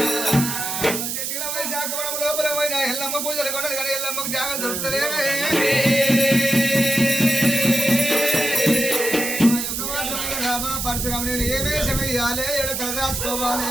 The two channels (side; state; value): right; noise; hiss, 3 dB below the sound